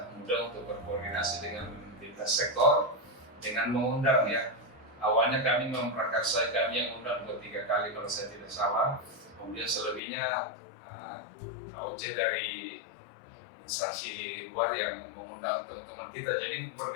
mudah untuk berkoordinasi dengan lintas sektor dengan mengundang ya. Awalnya kami memprakarsai, kami yang undang 2-3 kali kalau saya tidak salah, kemudian selebihnya AOC dari instansi luar yang mengundang teman-teman kita, jadi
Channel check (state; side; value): drops out; right; at 10.0 s